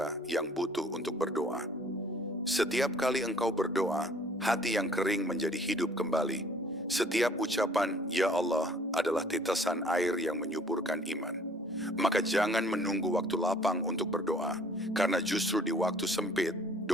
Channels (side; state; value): both; normal; correlation 0.55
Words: yang butuh untuk berdoa. Setiap kali engkau berdoa, hati yang kering menjadi hidup kembali. Setiap ucapan, "Ya Allah," adalah tetesan air yang menyuburkan iman. Maka jangan menunggu waktu lapang untuk berdoa, karena justru di waktu sempit,